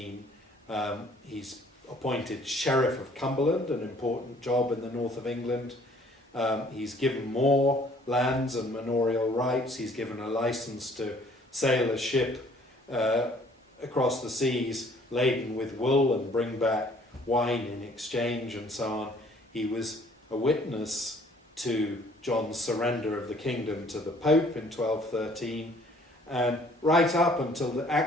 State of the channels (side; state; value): both; normal; correlation 0.58